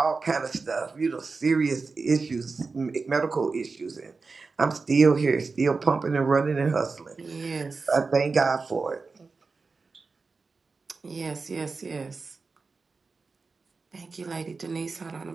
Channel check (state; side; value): quieter; left; 4.3 dB